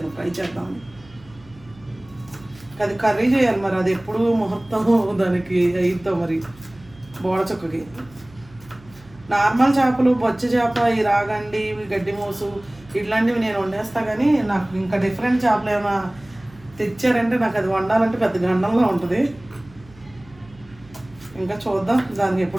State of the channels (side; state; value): right; noise; hum, 24 dB below the sound